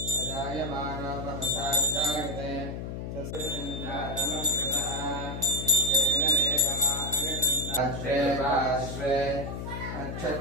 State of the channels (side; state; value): left; noise; hum, 6 dB below the sound